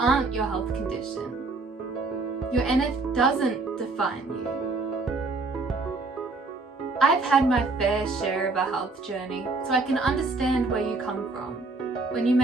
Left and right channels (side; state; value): left; quieter; 3.7 dB